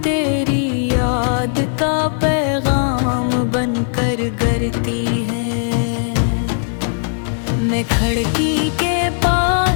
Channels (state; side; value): silent; right; 68 dB below the other